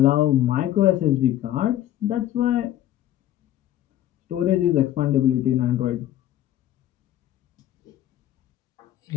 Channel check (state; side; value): quieter; right; 12.6 dB